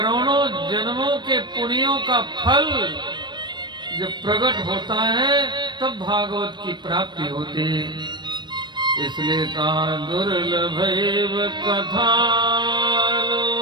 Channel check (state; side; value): late; left; 0.22 ms